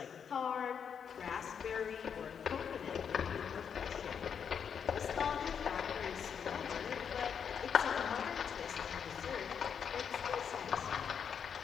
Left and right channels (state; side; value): quieter; right; 7.3 dB